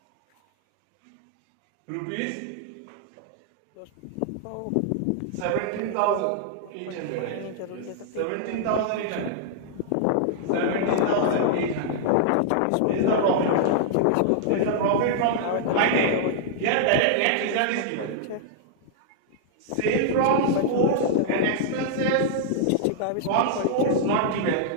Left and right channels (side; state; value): both; different; correlation -0.01